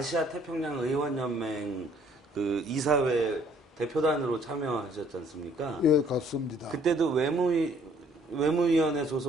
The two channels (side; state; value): both; normal; correlation 0.61